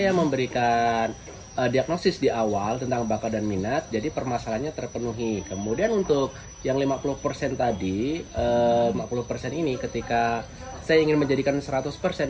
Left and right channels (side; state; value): both; identical; correlation 1.00